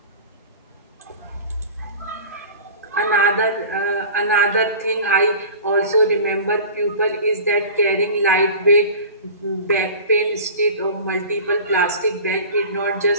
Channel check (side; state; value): both; inverted; correlation -0.38